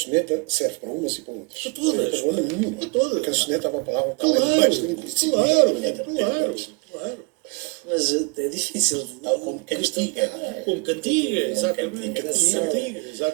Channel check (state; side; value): quieter; left; 30.4 dB